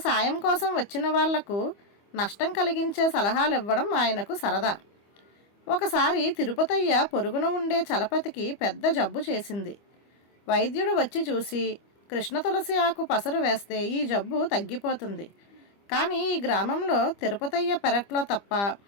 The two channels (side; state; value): right; late; 25 ms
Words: సాయం కోసం వచ్చిన వాళ్లకు నష్టం కలిగించే సలహాలు ఇవ్వడం ఆయనకు సరదా. ఒకసారి తిరుపతయ్య పొరుగున ఉండే చలపతికి పెద్ద జబ్బు చేసింది. వైద్యుడు వచ్చి చూసి కృష్ణ తులసి ఆకు పసరు వేస్తే ఈ జబ్బు తగ్గిపోతుంది, కానీ ఈ గ్రామంలో తిరుపతయ్య పెరట్లో తప్ప